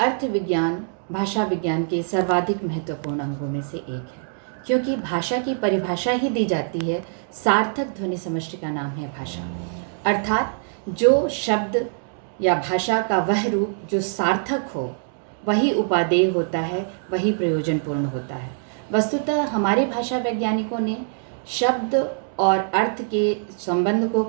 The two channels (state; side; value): silent; left; digital silence